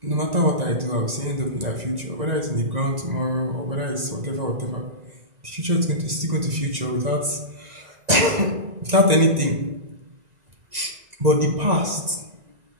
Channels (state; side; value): late; left; 1.9 ms